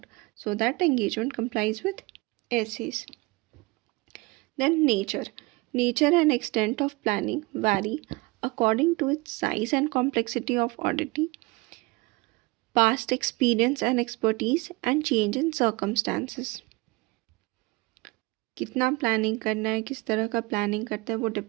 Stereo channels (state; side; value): quieter; left; 24.2 dB